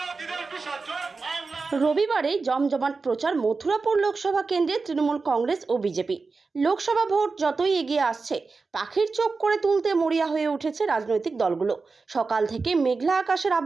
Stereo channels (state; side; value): quieter; left; 4.3 dB